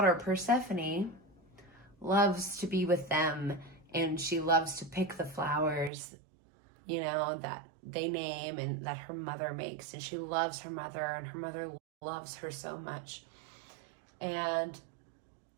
Persephone loves to be with them, and she loves to pick the flowers, that they name and that her mother makes. And she loves her mother, and her mother loves her so much. And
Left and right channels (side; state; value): left; drops out; at 5.9 s